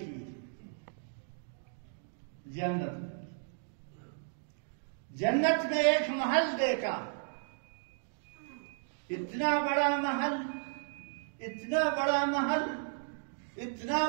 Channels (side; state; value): left; silent; digital silence